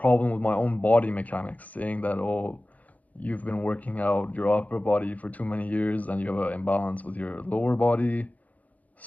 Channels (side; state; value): right; late; 0.075 ms